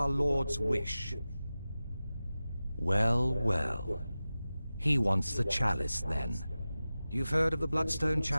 Lord's wish? Well, well. He wants the chalice, then. You've heard of the Bloodstone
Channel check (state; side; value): inverted; both; correlation -0.95